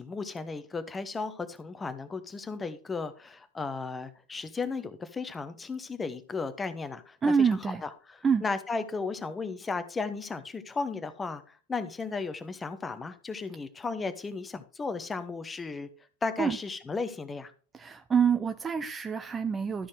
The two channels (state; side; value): normal; both; correlation 0.78